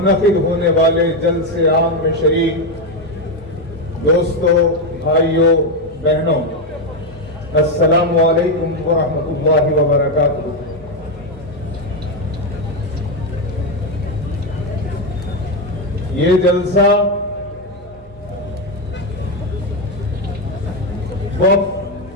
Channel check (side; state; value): both; normal; correlation 0.07